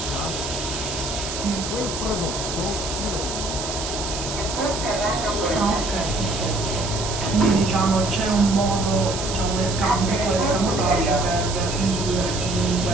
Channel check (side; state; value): right; noise; hiss, 6 dB below the sound